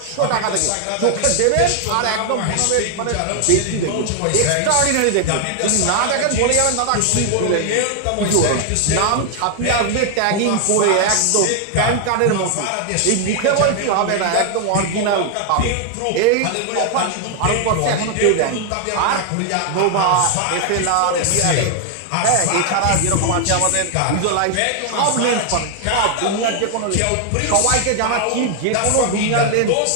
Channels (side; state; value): both; different; correlation 0.00